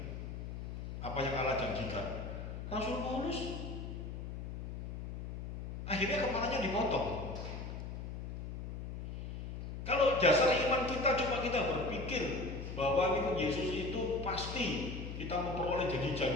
Apa yang Allah janjikan? Rasul Paulus akhirnya kepalanya dipotong. Kalau dasar iman kita cuma kita berpikir bahwa Yesus itu pasti kita memperoleh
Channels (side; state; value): left; noise; hum, 7 dB below the sound